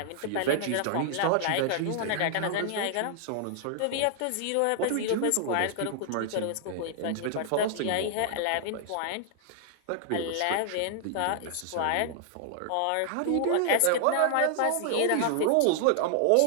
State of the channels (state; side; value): different; both; correlation -0.01